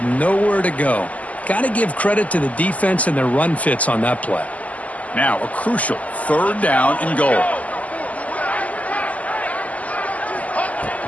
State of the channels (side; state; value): right; late; 0.073 ms